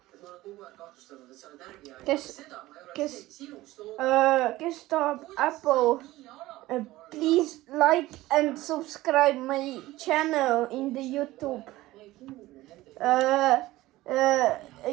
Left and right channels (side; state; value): left; quieter; 17.4 dB